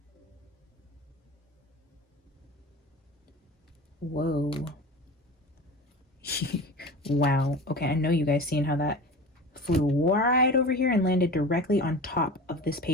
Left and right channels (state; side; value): normal; both; correlation 0.34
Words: Whoa. Wow. Okay, I know you guys seen how that flew right over here and landed directly on top of this